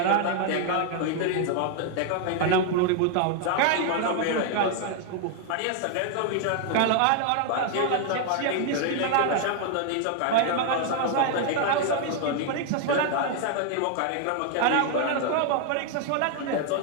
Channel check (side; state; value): both; different; correlation 0.00